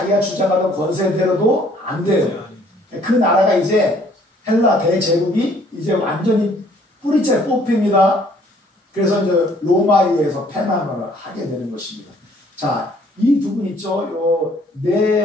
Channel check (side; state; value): both; normal; correlation 0.60